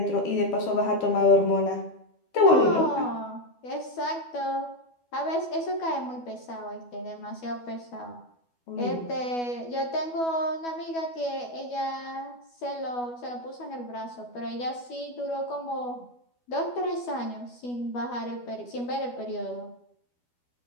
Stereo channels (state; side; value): late; right; 12 ms